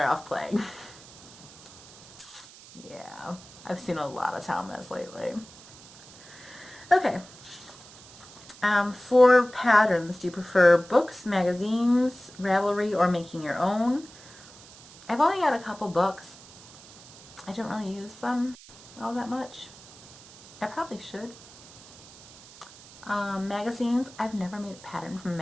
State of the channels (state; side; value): noise; right; hiss, 20 dB below the sound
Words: off playing. Yeah. I've seen a lot of Thomas lately. Okay. For patterns, do you prefer books, magazines, Ravelry, or making your own? I've only got a couple books. I don't really use them all that much. I probably should. Magazines, I've never made a pattern from a